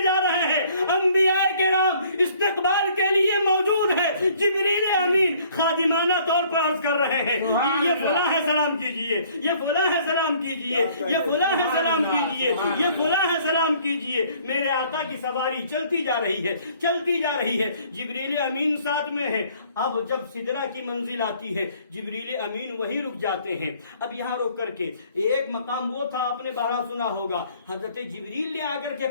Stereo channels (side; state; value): both; inverted; correlation -0.58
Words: جا رہے ہیں، انبیاء کرام استقبال کے لیے موجود ہے، جبریل امین خادمانہ طور پر عرض کر رہے ہیں یہ فلاں ہے سلام کیجئے، یہ فلاں ہے سلام کیجئے، یہ فلاں ہے سلام کیجئے، یہ فلاں ہے سلام کیجئے۔ میرے آقا کی سواری چلتی جا رہی ہے، چلتی جا رہی ہے، جبریل امین ساتھ میں ہے۔ اب جب سدرہ کی منزل آتی ہے جبریل امین وہیں رک جاتے ہیں۔ اب یہاں رک کر کے ایک مقام وہ تھا آپ نے بارہ سنا ہوگا، حضرت جبریل نے آ کر کے